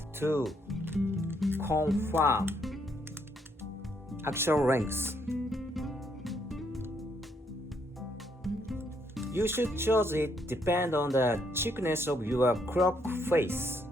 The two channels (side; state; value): both; normal; correlation 0.73